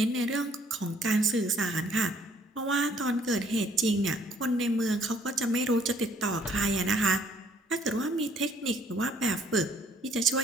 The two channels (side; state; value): both; normal; correlation 0.62